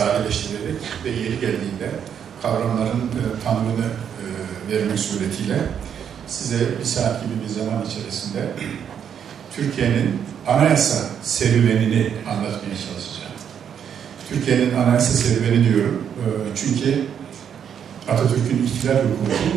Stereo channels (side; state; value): left; quieter; 8.3 dB